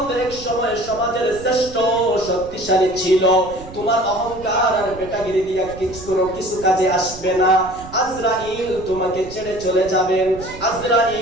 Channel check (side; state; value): right; noise; rumble, 16 dB below the sound